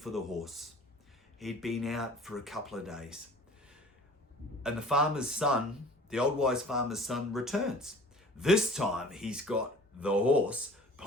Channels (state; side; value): normal; both; correlation 0.46